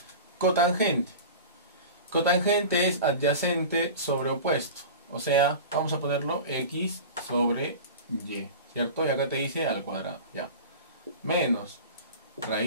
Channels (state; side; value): inverted; both; correlation -0.34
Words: cotangente. Cotangente es adyacente sobre opuesto. O sea, vamos a ponerlo X sobre Y, ¿cierto? Y acá te dice al cuadrado, ya. Menos